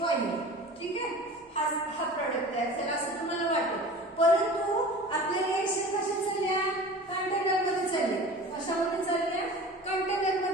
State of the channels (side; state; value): both; normal; correlation 0.39